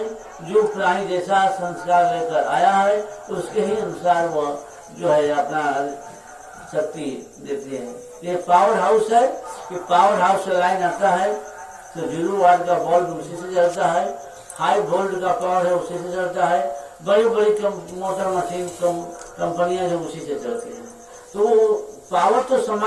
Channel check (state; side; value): identical; both; correlation 1.00